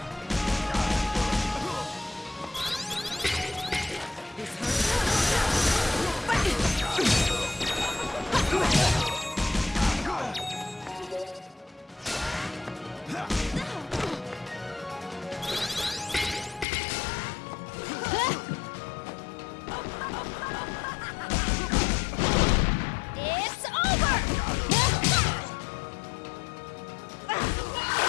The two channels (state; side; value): drops out; right; at 16.7 s